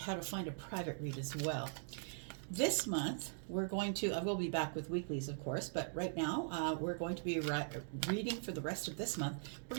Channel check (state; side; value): silent; left; digital silence